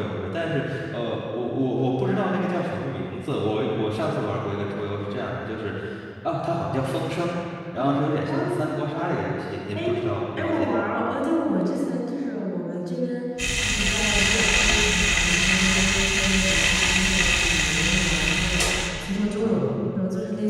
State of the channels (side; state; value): both; identical; correlation 1.00